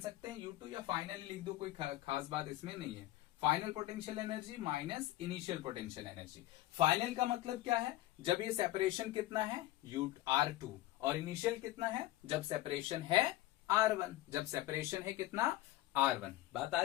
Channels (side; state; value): right; quieter; 16.1 dB